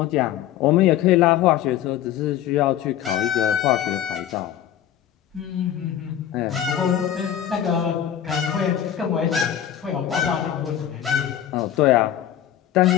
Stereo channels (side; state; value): right; quieter; 10.8 dB